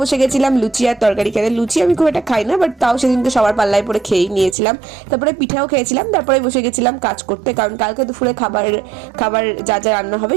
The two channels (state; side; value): drops out; left; at 4.5 s